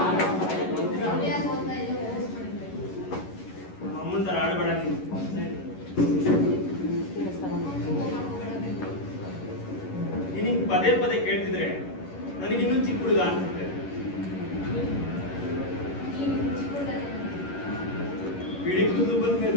ಅಮ್ಮನ ತರ ಆಡಬೇಡ ನೀನು. ನಿನಗೆ ಪದೇ ಪದೇ ಕೇಳ್ತಿದ್ರೆ ನನಗಿನ್ನೂ ಚಿಕ್ಕ ಹುಡುಗ ಅನ್ಸುತ್ತೆ. ಬಿಳಿ ಕೂದಲು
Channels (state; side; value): late; right; 11 ms